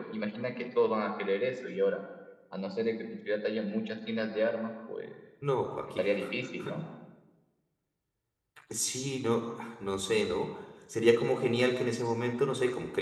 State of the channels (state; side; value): identical; both; correlation 1.00